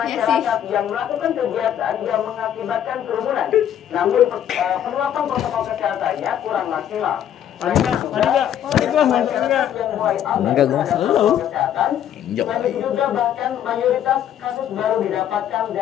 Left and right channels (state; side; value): quieter; right; 10.3 dB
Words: yang melakukan kegiatan yang mengakibatkan kerumunan. Namun penerapan protokol kesehatannya kurang maksimal. Enggak, gue selalu. Selain juga bahkan mayoritas kasus baru didapatkan